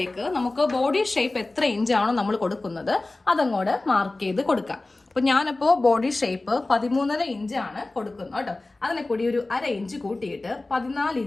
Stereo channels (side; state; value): right; quieter; 3.0 dB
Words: നമുക്ക് ബോഡി ഷേപ്പ് എത്ര ഇഞ്ചാണോ നമ്മൾ കൊടുക്കുന്നത് അതങ്ങോട്ട് മാർക്ക് ചെയ്ത് കൊടുക്കാം. അപ്പൊ ഞാനിപ്പോ ബോഡി ഷേപ്പ് 13.5 ഇഞ്ചാണ് കൊടുക്കുന്നത് കേട്ടോ. അതിനെ കൂടി ഒരു 1/2 ഇഞ്ച് കൂട്ടിയിട്ട് 14